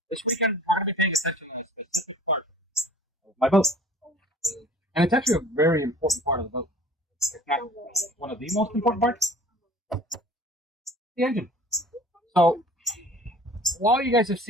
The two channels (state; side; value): normal; both; correlation 0.47